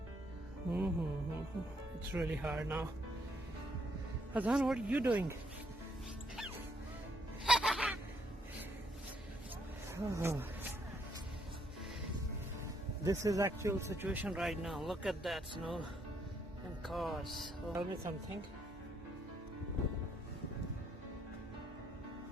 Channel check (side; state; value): both; normal; correlation 0.72